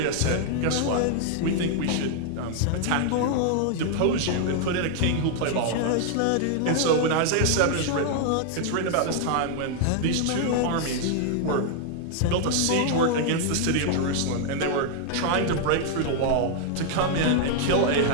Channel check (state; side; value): different; both; correlation 0.00